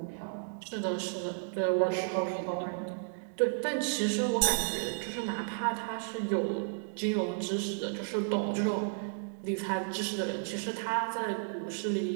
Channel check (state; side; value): silent; left; digital silence